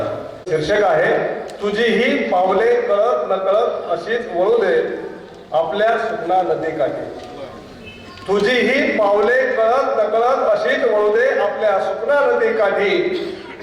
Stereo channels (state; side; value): identical; both; correlation 1.00